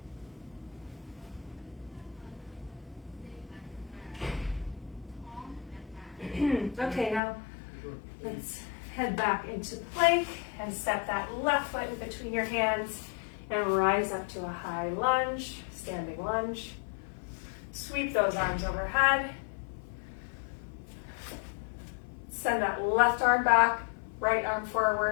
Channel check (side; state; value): right; drops out; at 7.2 s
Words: Okay, now let's head back into plank and step that left foot in between your hands and rise up to a high lunge, standing lunge. Sweep those arms overhead. Send that left arm back, right arm